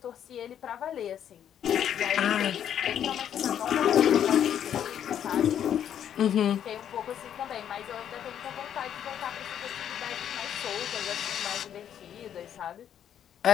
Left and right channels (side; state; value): right; quieter; 9.6 dB